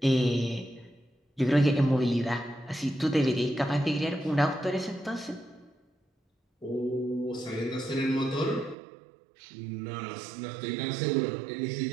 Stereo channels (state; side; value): drops out; left; at 8.8 s